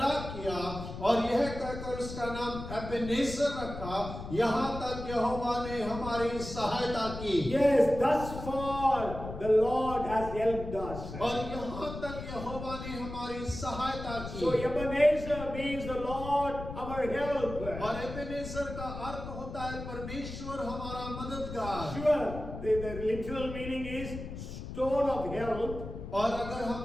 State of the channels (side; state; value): left; noise; rumble, 9 dB below the sound